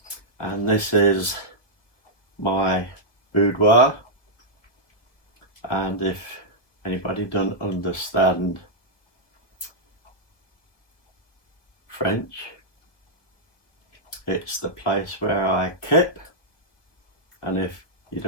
And this is my boudoir. And if anybody doesn't understand French, it's the place where I keep. And if you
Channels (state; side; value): late; right; 1.8 ms